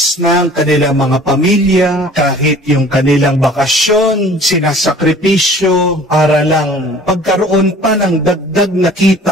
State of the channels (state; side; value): normal; both; correlation 0.49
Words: na ang kanilang mga pamilya, kahit yung kanilang bakasyon, sinasakripisyo para lang pagkaroon pa ng dagdag na